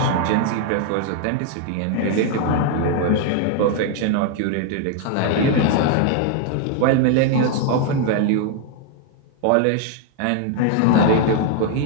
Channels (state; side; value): different; both; correlation 0.00